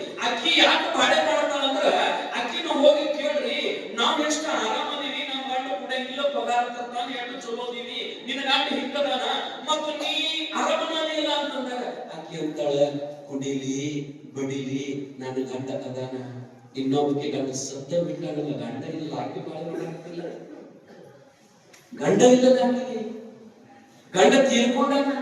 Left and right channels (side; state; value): both; identical; correlation 1.00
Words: ಅಕ್ಕಿ ಯಾಕೆ ಬಾಳೆ ಮಾಡ್ತಾಳ ಅಂದ್ರ, ಅಕ್ಕಿನ ಹೋಗಿ ಕೇಳ್ರಿ, ನಾವ್ ಎಷ್ಟು ಆರಾಮದೀವಿ, ನಮ್ ಗಂಡ ಕುಡಿಯಂಗಿಲ್ಲ, ಪಗಾರ ತರ್ತಾನ, ಎಷ್ಟು ಚಲೋದೀವಿ, ನಿನ್ನ ಗಂಡ ಹಿಂಗದಾನ, ಮತ್ತು ನೀ ಆರಾಮನೇ ಇಲ್ಲ ಅಂತಂದಾಗ ಅಕ್ಕಿ ಅಂತಾಳ, ಕುಡಿಲಿ ಬಡಿಲಿ ನನ್ನ ಗಂಡ ಅದಾನ. ಇನ್ನೊಬ್ಬಕ್ಕೆ ಗಂಡ ಸತ್ತ ಬಿಟ್ಟಾಗಲ್ಲ, ಗಂಡ ಇಲ್ಲ, ಆಕೆ ಬಾಳೆ ಮಾಡಾಕ್ತಿಲ್ಲ, ಗಂಡ ಇಲ್ಲ, ಗಂಡ ತೀರ್ಕೊಂಡಾನ,